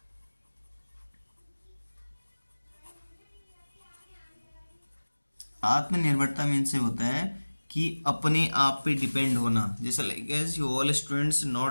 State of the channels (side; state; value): both; inverted; correlation -1.00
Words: आत्मनिर्भरता मीन से होता है कि अपने आप पे डिपेंड होना, जैसे like as you all students